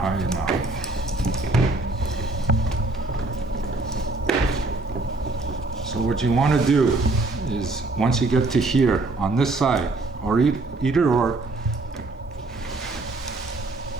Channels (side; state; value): left; quieter; 3.0 dB